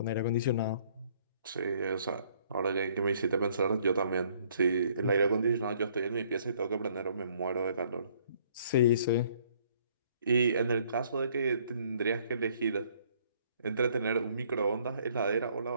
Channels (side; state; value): both; inverted; correlation -0.63